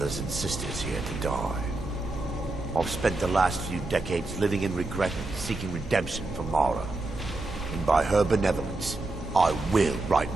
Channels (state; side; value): quieter; left; 3.0 dB